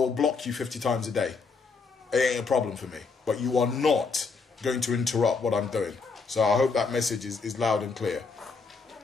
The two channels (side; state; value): right; quieter; 4.7 dB